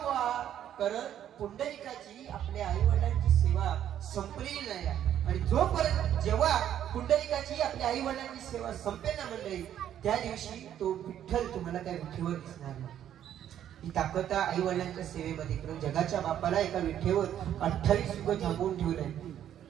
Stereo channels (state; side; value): quieter; left; 10.6 dB